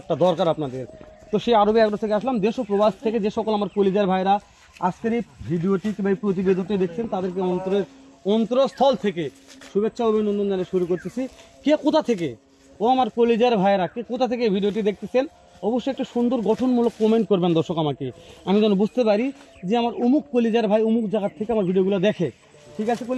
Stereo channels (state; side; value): identical; both; correlation 1.00